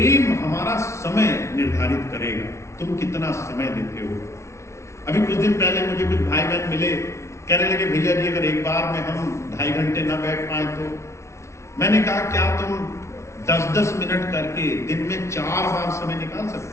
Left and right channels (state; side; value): late; right; 0.13 ms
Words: हमारा समय निर्धारित करेगा, तुम कितना समय देते हो। अभी कुछ दिन पहले मुझे कुछ भाई बहन मिले, कहने लगे भैया जी अगर एक बार में हम 2.5 घंटे ना बैठ पाए तो। मैंने कहा क्या तुम 10-10 मिनट करके दिन में 4 बार समय निकाल